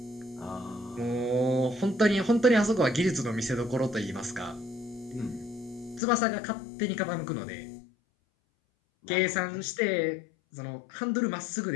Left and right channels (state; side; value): drops out; right; at 6.0 s